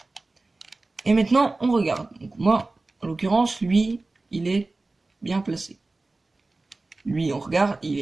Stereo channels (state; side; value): quieter; left; 3.3 dB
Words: Et maintenant, on regarde. Donc moi, en l'occurrence, lui, il est bien placé. Lui, on regarde, il